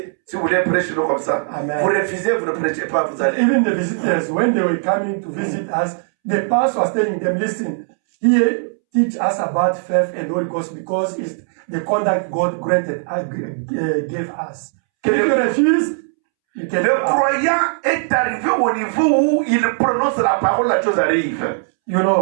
Si vous voulez prêcher nous comme ça, Amen. vous refusez, vous ne prêchez pas, vous allez. Even the visitors, when they were coming to visit us, the pastor was telling them, listen, here teach us about faith and Holy Ghost because it's the conduct God gave us. If you refuse, you can. Le croyant est arrivé au niveau où il prononce la parole, la chose arrive. You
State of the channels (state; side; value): silent; left; 67 dB below the other